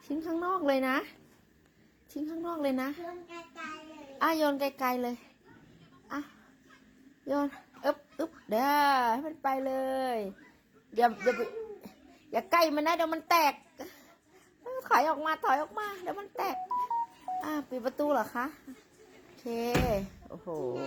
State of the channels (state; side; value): identical; both; correlation 1.00